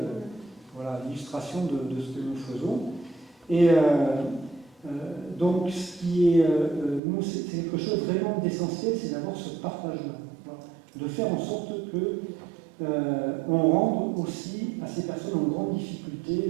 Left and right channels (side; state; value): left; drops out; at 7.0 s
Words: l'illustration de ce que nous faisons. Et donc, ce qui est, nous, c'est quelque chose vraiment d'essentiel, c'est d'avoir ce partage-là. Voilà, de faire en sorte que on rende aussi à ces personnes en grande difficulté